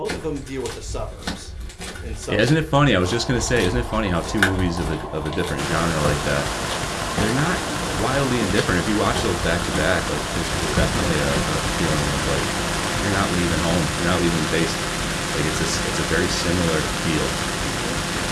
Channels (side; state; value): both; identical; correlation 1.00